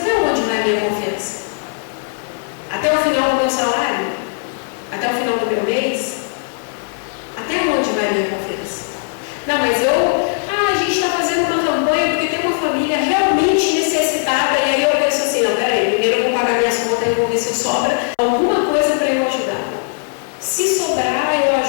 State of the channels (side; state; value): right; silent; 67 dB below the other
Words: onde vai a minha confiança? Até o final do meu salário? Até o final do meu mês? Até onde vai a minha confiança? Não, mas a gente está fazendo uma campanha porque tem uma família realmente necessitada, e aí eu penso assim, não, peraí, primeiro eu vou pagar minhas contas e vou ver se sobra alguma coisa para eu ajudar. Se sobrar, eu